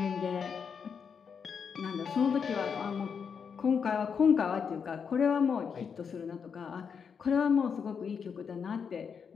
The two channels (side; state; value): right; quieter; 6.5 dB